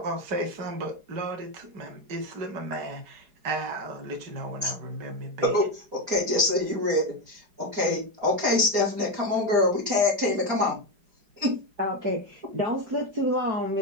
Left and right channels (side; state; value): left; late; 4.9 ms